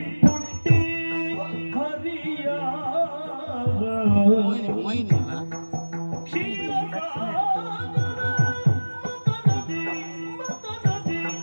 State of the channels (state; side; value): inverted; both; correlation -1.00